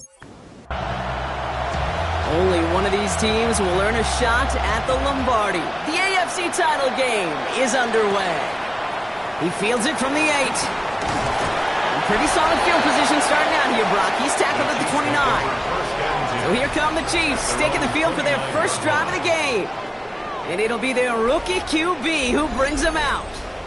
only one of these teams will earn a shot at the Lombardi. The AFC title game is underway. He fields it from the 8. Pretty solid field position starting out here, Brock. He's tackled at the 29. So here come the Chiefs, taking the field for their first drive of the game. And it'll be their rookie QB who brings them out.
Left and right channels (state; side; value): identical; both; correlation 1.00